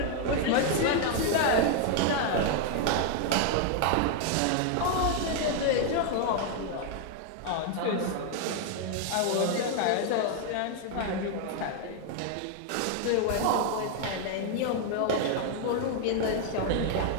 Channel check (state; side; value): different; both; correlation 0.00